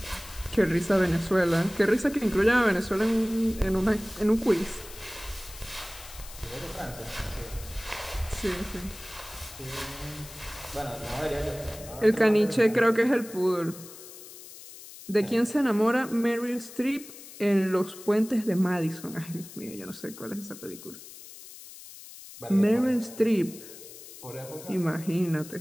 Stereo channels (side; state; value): left; noise; hiss, 16 dB below the sound